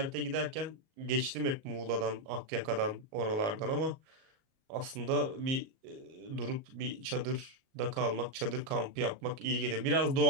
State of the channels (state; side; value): late; left; 38 ms